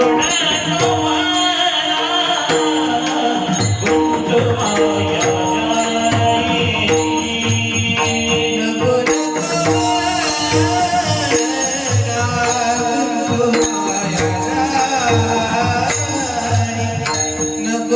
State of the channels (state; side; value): identical; both; correlation 1.00